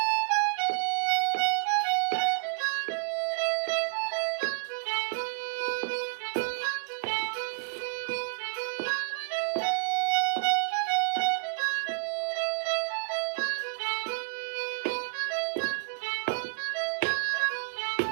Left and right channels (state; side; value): silent; left; 58 dB below the other